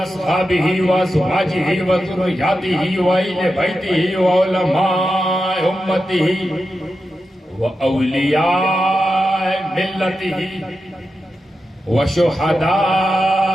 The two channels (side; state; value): both; normal; correlation 0.90